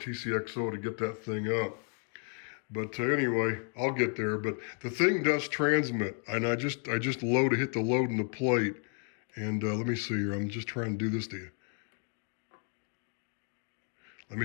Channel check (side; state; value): right; quieter; 40.0 dB